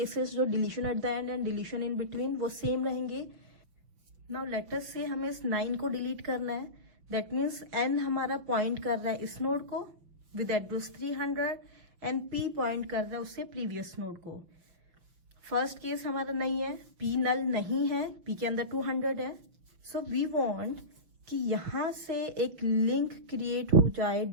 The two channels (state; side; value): late; left; 5.9 ms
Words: जो deletion at the end and deletion in between वो सेम रहेंगे. नाउ लेट अस से हमें इस 9 को डिलीट करना है. दैट मीन्स n हमारा पॉइंट कर रहा है इस नोड को with address 300 and p point कर रहा है उससे प्रीवियस नोड को. फर्स्ट केस हमारा नहीं है, p नल नहीं है, p के अंदर 200 है. सो वी वांट कि यहां से एक लिंक क्रिएट हो जाए